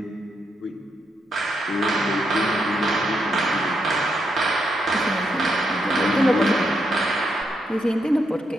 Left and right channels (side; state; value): both; normal; correlation 0.80